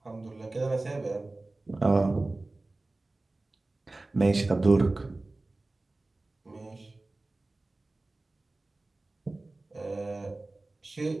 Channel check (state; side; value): quieter; left; 3.1 dB